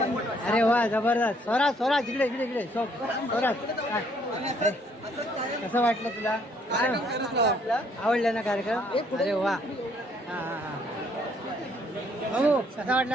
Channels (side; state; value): both; normal; correlation 0.66